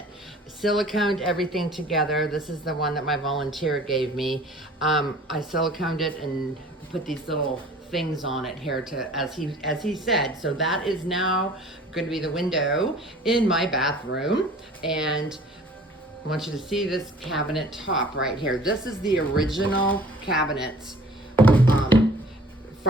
Siliconed everything together. This is the one that my volunteer gave me. I siliconed it and put these little things on it here to, as he said. So that is now going to be the window in my bathroom. And I want you to see this cabinet top right here. This is the original cabinets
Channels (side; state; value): both; normal; correlation 0.49